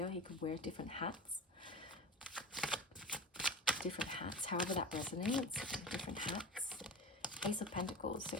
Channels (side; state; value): both; normal; correlation 0.31